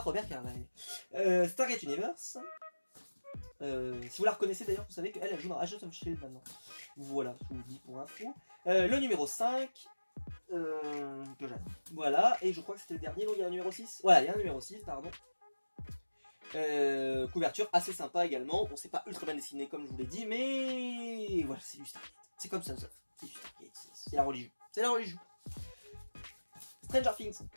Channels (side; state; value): both; inverted; correlation -1.00